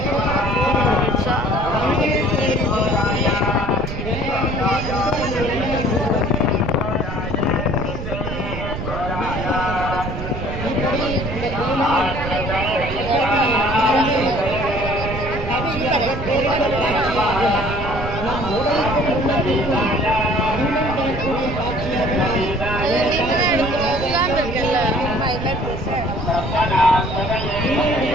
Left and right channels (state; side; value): noise; right; rumble, 6 dB below the sound